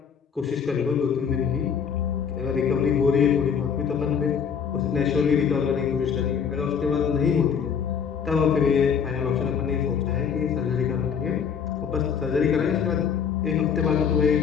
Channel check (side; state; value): right; quieter; 7.1 dB